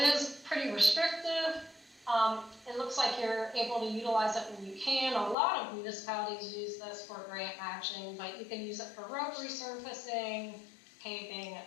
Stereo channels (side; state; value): right; drops out; at 5.4 s